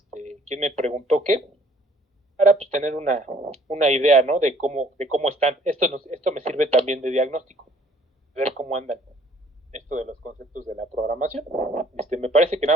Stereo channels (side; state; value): both; normal; correlation 0.59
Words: quién me preguntó qué, para pues tener una idea, ¿no? De cómo están. Esto me sirve también de diagnóstico, ver cómo andan esto de los conceptos de la programación. Me parece que